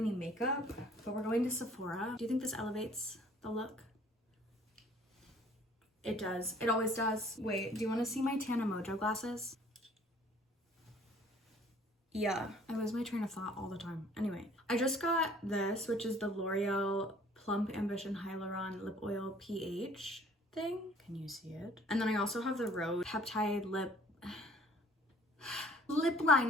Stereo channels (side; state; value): both; normal; correlation 0.55